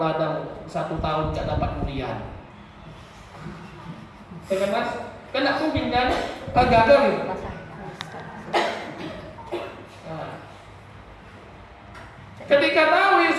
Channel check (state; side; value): identical; both; correlation 1.00